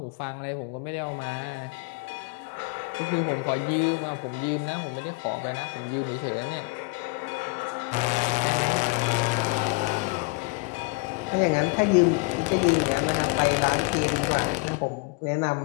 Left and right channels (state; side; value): quieter; right; 26.8 dB